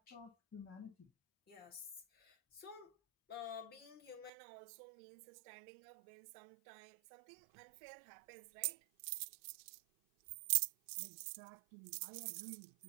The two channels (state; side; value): drops out; left; at 4.3 s